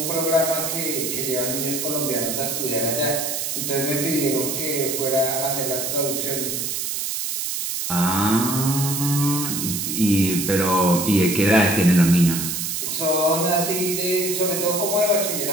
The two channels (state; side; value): noise; right; hiss, 2 dB below the sound